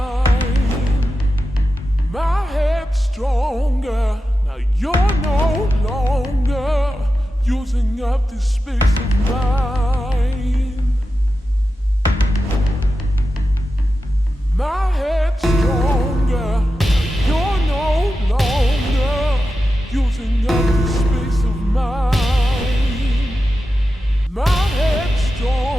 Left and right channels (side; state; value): both; normal; correlation 0.91